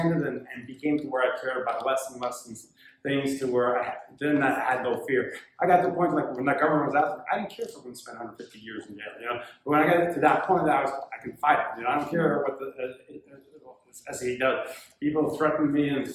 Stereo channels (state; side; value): identical; both; correlation 1.00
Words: and became to where I cared about less and less things to where I had no fear. I got to the point, like when the government was out, I didn't care if someone spent 150 years in jail, But when I got to that point, I can fight it, I don't care what the SE does. People threaten me and